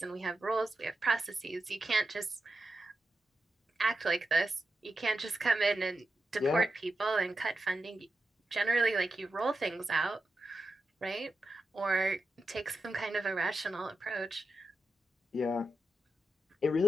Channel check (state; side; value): normal; both; correlation 0.89